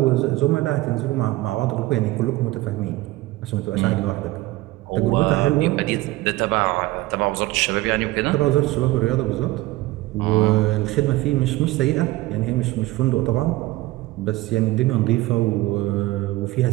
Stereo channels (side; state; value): left; quieter; 18.6 dB